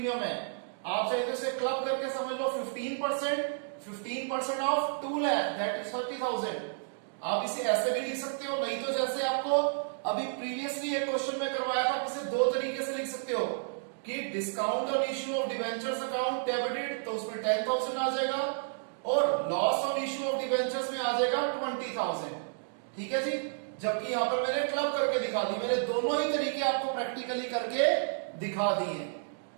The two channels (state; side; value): silent; left; digital silence